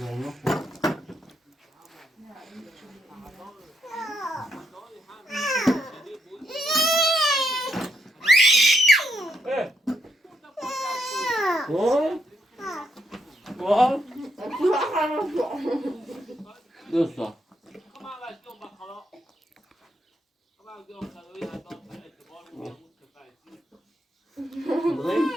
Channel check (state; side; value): normal; both; correlation 0.78